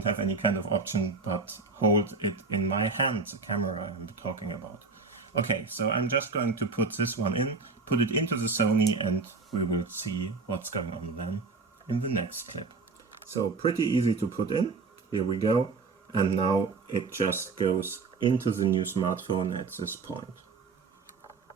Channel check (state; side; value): quieter; left; 4.5 dB